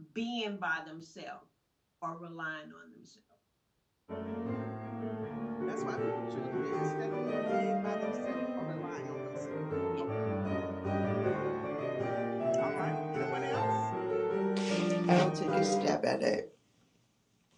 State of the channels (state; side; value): identical; both; correlation 1.00